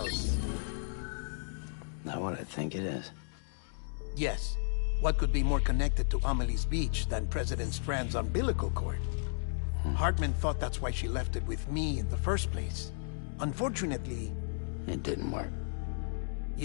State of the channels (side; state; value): right; silent; digital silence